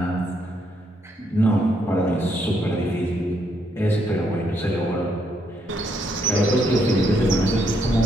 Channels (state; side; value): normal; both; correlation 0.75